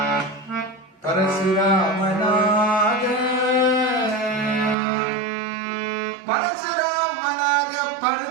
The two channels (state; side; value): drops out; left; at 4.8 s